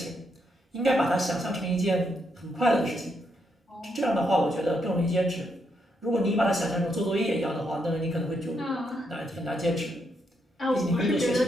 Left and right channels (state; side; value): normal; both; correlation 0.78